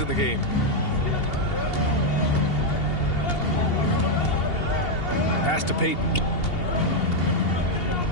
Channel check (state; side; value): late; right; 2.8 ms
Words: in the game. Pass to Payton.